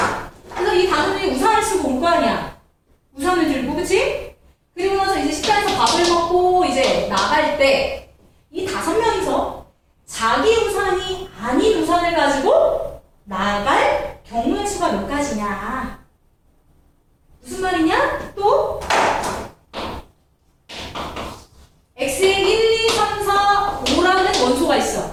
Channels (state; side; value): identical; both; correlation 1.00